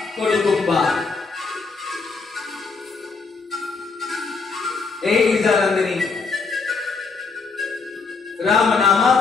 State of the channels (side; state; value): right; quieter; 4.5 dB